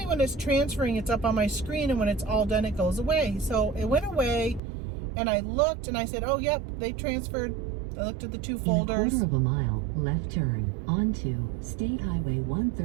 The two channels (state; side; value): drops out; left; at 4.6 s